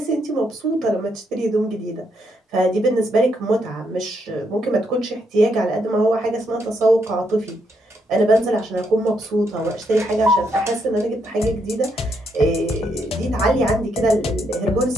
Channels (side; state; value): both; normal; correlation 0.77